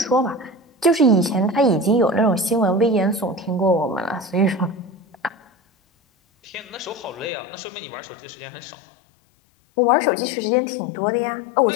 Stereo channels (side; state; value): right; drops out; at 7.3 s